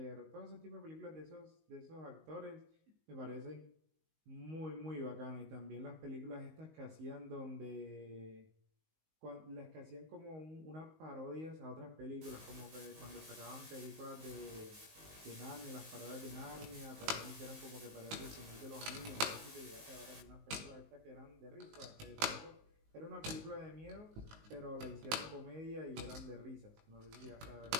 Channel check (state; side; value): late; left; 19 ms